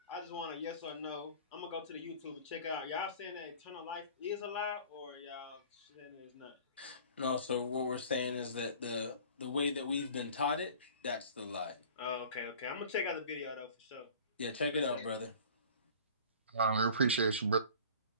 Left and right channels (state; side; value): inverted; both; correlation -0.45